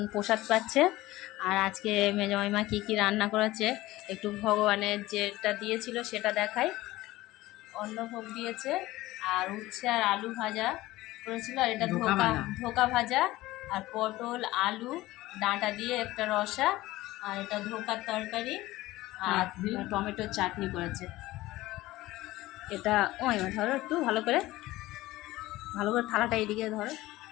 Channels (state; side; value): quieter; right; 17.7 dB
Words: প্রসাদ পাচ্ছে। আর আজকে মেজো মাইমা কী কী রান্না করেছে একটু ভগবানের যেটা দিয়েছিল সেটা দেখাই। অন্নভোগ দিয়েছে, আর উচ্ছে আর আলু ভাজা করেছিল, আর এটা ধোকা ভাজা, আর পটল আলু ডাঁটা দিয়ে একটা রসা, আর এটা ধোকার তরকারি, আর টমেটোর চাটনি করেছে। এটা মাইমা ধরো একটু ভালো করে থালাটা এদিকে ধরো।